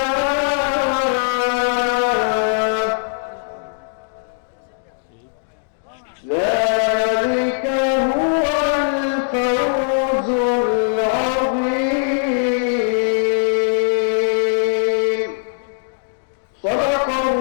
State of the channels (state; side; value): silent; right; digital silence